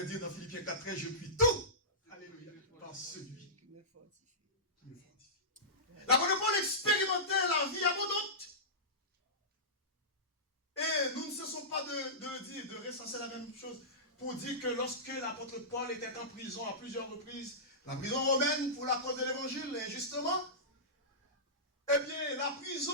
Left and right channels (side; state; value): both; normal; correlation -0.18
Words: dire dans Philippiens 4:13, je puis tout, alléluia, par celui qui me fortifie. L'apôtre Paul expérimentait la vie abondante. Et nous ne cessons pas de recenser la même chose pour dire que lorsque l'apôtre Paul était en prison à plusieurs reprises, la prison romaine pour la cause de l'évangile, injustement, eh bien, la